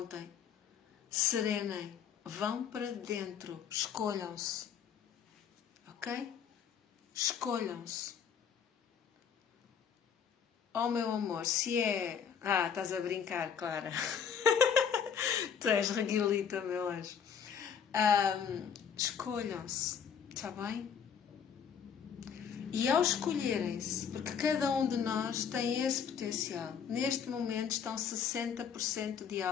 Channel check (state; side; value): quieter; right; 7.4 dB